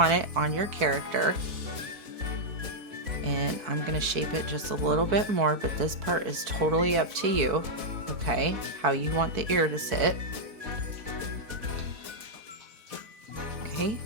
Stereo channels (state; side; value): late; left; 4.5 ms